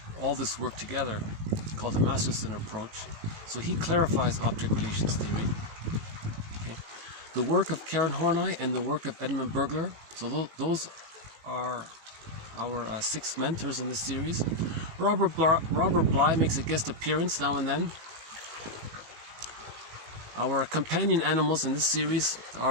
all this work together. It's called the Masterson approach. So he clarifies object relations theory. Okay. The work of Karen Horney and the work of Edmund Burglar. So those are our 6 mentors in this series. Robert Bly makes a guest appearance now and then. Our companion animals in this series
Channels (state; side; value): late; left; 19 ms